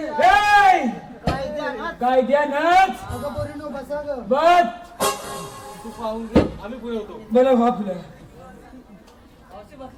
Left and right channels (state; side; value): identical; both; correlation 1.00